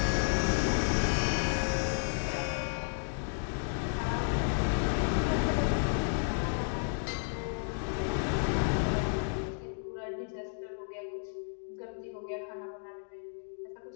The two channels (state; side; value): silent; right; 56 dB below the other